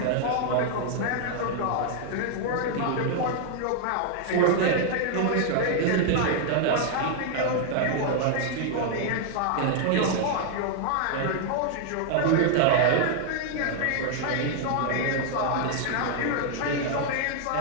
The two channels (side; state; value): both; different; correlation 0.00